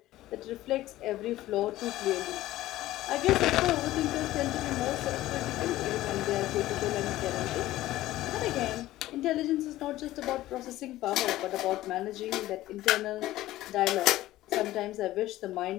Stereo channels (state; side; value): quieter; right; 15.7 dB